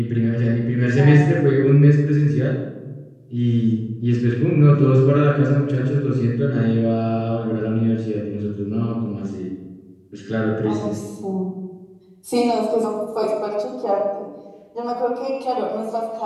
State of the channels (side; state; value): both; identical; correlation 1.00